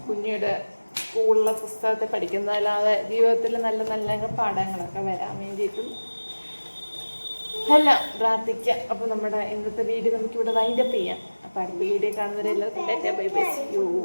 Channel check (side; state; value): both; inverted; correlation -1.00